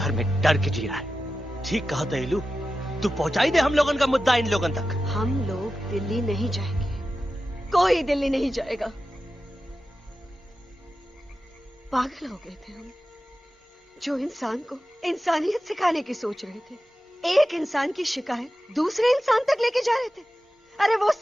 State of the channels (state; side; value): normal; both; correlation 0.93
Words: में डर के जी रहा है। ठीक कहा दहलू, तू पहुंचाई दे हम लोगन का मुद्दा इन लोगन तक। हम लोग दिल्ली नहीं जाएंगे, कोई दिल्ली नहीं जाएगा। पागल हो गए थे हम, जो इंसान को इंसानियत सिखाने की सोच रहे थे, एक इंसान की शिकायत दूसरे इंसान तक लेके जा रहे थे। अरे वो